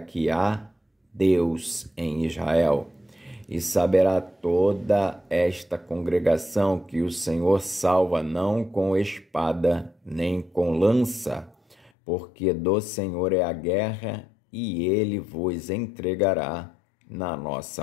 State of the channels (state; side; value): drops out; right; at 11.9 s